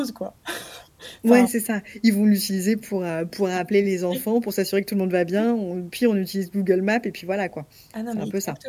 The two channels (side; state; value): both; identical; correlation 1.00